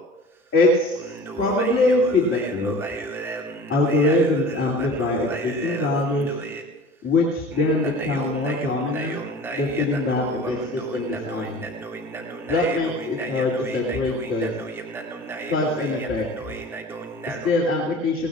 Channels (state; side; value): normal; both; correlation 0.41